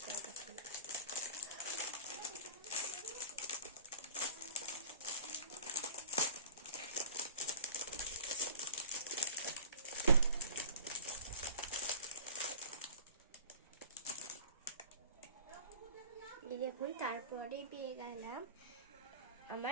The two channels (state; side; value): inverted; both; correlation -0.43